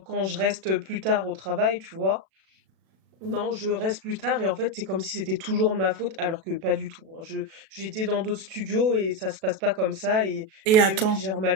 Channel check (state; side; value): late; left; 37 ms